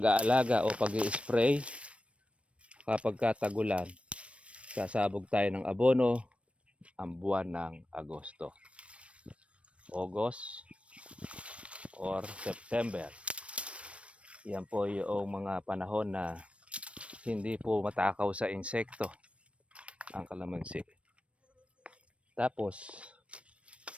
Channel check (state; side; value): late; left; 0.062 ms